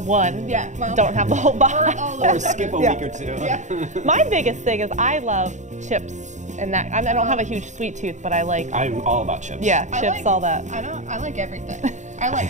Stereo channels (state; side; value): late; left; 0.35 ms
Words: one. Don't have the whole box. Or skip a week or two. My biggest thing is I love chips, and that I don't have a huge sweet tooth, but I'm all about chips. Yeah, chips, all that. I like everything. I